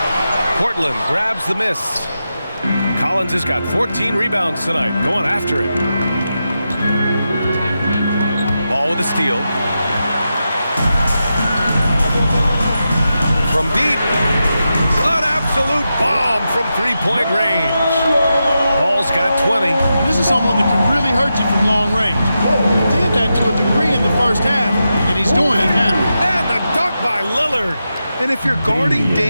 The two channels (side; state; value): both; inverted; correlation -0.89